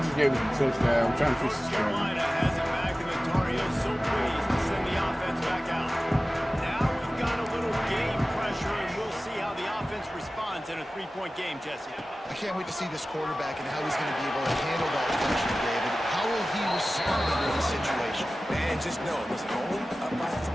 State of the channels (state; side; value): normal; both; correlation 0.96